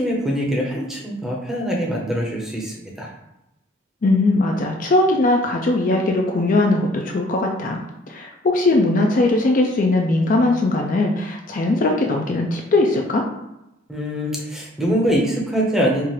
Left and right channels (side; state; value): both; normal; correlation 0.58